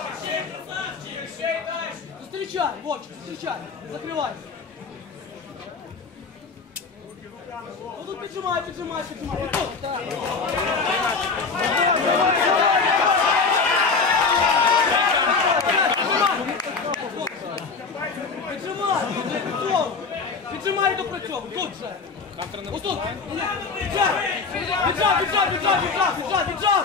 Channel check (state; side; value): quieter; right; 4.8 dB